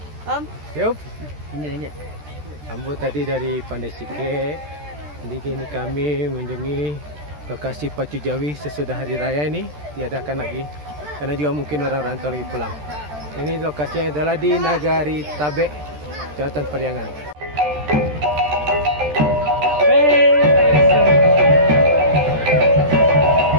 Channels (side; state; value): left; late; 13 ms